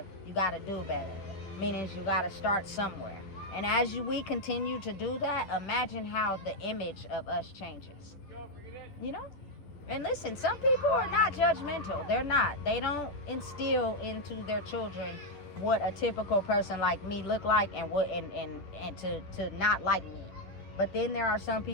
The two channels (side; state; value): right; late; 10 ms